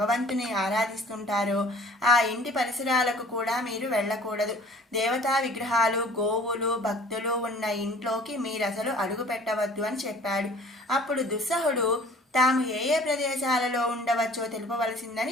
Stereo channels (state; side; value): normal; both; correlation 0.51